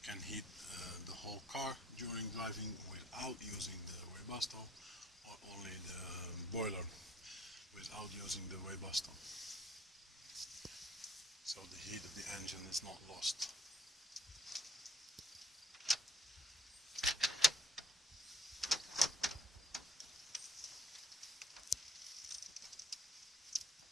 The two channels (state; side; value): normal; both; correlation 0.59